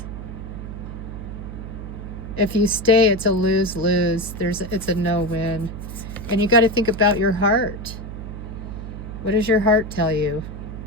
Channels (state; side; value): noise; right; hum, 9 dB below the sound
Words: If you stay, it's a lose-lose. It's a no-win. And you got to think about your heart. What does your heart tell you?